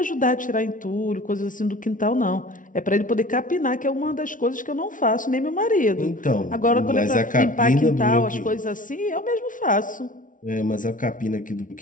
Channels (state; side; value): late; right; 0.38 ms